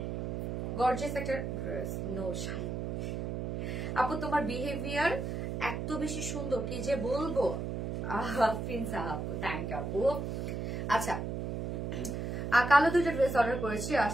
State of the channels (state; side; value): noise; right; hum, 3 dB below the sound